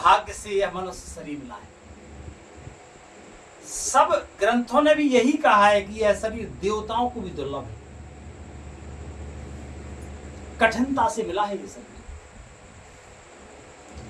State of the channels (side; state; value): both; identical; correlation 1.00